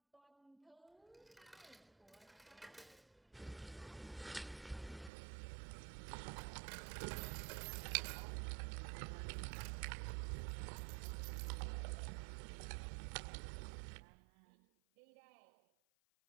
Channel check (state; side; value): drops out; left; at 5.1 s